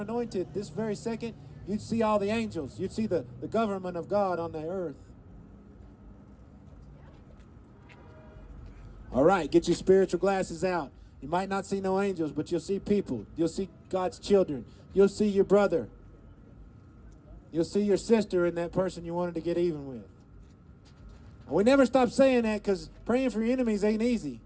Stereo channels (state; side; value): identical; both; correlation 1.00